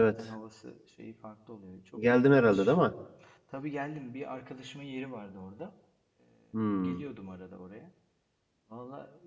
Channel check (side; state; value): both; identical; correlation 1.00